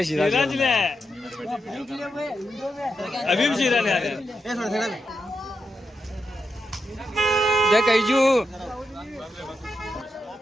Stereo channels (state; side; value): normal; both; correlation 0.86